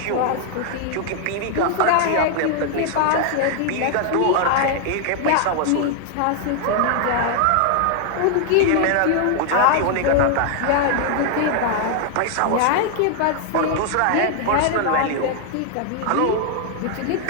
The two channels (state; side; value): different; both; correlation 0.00